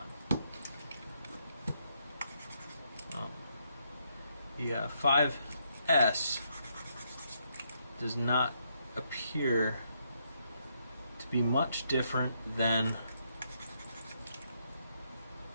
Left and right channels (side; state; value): both; inverted; correlation -0.76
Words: The 5S does not appear to be much different than